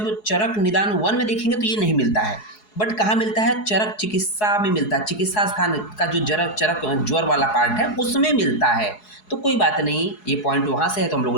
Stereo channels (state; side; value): late; right; 4.7 ms